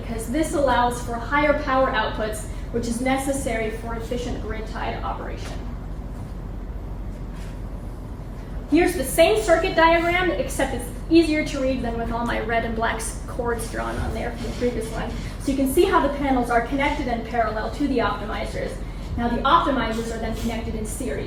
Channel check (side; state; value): both; identical; correlation 1.00